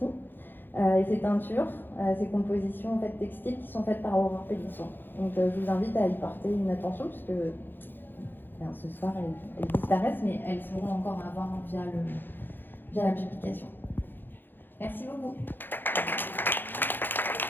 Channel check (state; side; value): late; right; 0.095 ms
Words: et ces teintures, ces compositions en fait textiles qui sont faites par Aurore Pélisson. Donc, je vous invite à y porter une attention puisque ce soir elles disparaissent, mais elles seront encore à voir via la publication. Merci beaucoup.